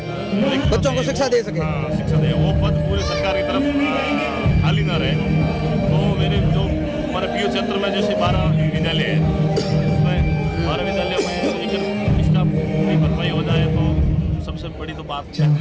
बच्चों को शिक्षा दे सके। शिक्षा दे, वो पद पूरे सरकार की तरफ खाली ना रहे। तो मेरे जो हमारे पीयू क्षेत्र में जैसे 12 विद्यालय है, उसमें 12 विद्यालयों में एक स्टाफ की भरपाई हो जाए तो सबसे बड़ी तो बात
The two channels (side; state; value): both; identical; correlation 1.00